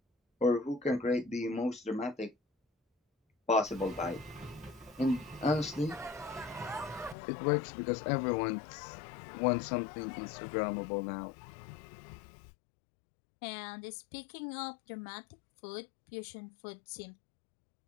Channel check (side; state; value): right; drops out; at 7.2 s